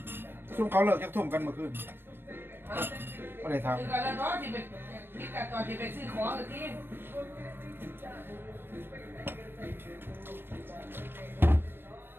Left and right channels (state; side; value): late; left; 0.10 ms